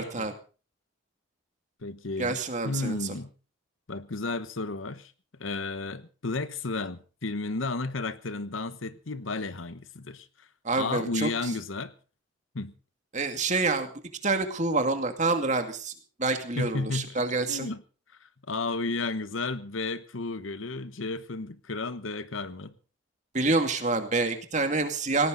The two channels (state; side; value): normal; both; correlation 0.15